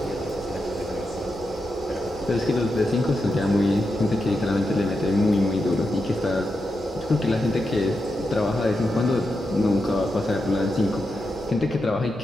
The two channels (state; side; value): normal; both; correlation 0.87